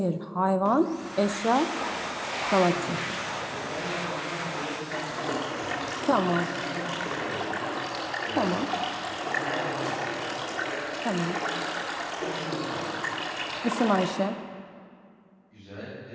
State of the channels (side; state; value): both; identical; correlation 1.00